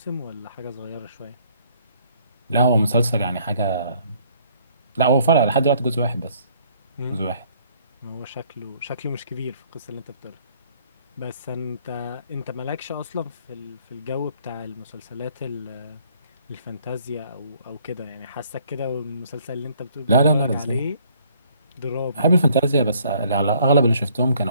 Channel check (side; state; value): both; inverted; correlation -0.62